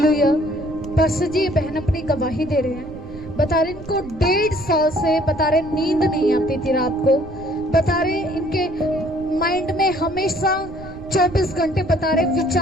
पास्टर जी ये बहन अपनी गवाही दे रहे हैं। बता रहे इनको 1.5 साल से बता रहे नींद नहीं आती थी रात को। बता रहे इनके माइंड में हमेशा 24 घंटे बता रहे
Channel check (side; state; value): right; noise; rumble, 15 dB below the sound